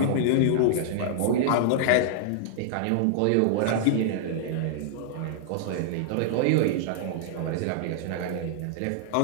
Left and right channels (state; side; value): different; both; correlation -0.01